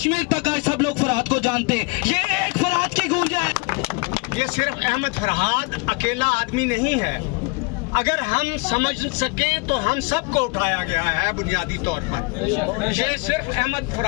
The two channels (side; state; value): right; quieter; 29.1 dB